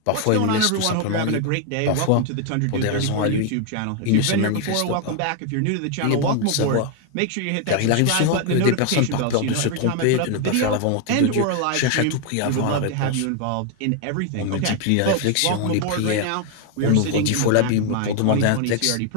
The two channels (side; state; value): both; different; correlation 0.01